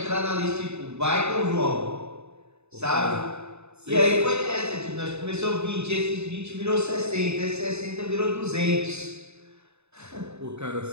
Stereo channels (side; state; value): left; late; 0.81 ms